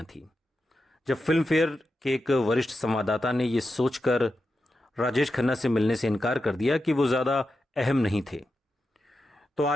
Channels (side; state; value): both; normal; correlation 0.89